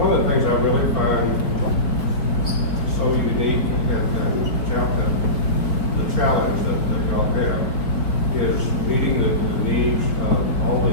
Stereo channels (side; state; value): right; late; 4.6 ms